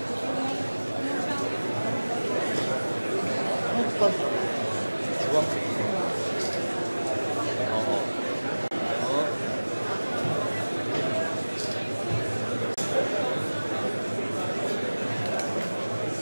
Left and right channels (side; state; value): both; inverted; correlation -1.00